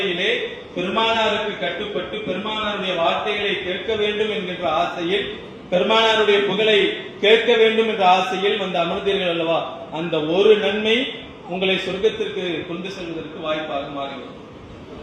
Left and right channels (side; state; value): both; identical; correlation 1.00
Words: பெருமானாருக்கு கட்டுப்பட்டு பெருமானாருடைய வார்த்தைகளை கேட்க வேண்டும் என்கின்ற ஆசையில் பெருமானாருடைய புகழை கேட்க வேண்டும் என்ற ஆசையில் வந்து அமர்ந்தீர்கள் அல்லவா, அந்த ஒரு நன்மை உங்களை சொர்க்கத்திற்கு கொண்டு செல்வதற்கு வாய்ப்பாக மாறிவிடும்.